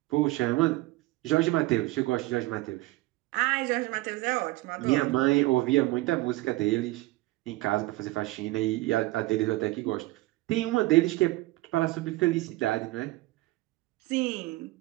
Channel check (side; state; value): left; quieter; 19.6 dB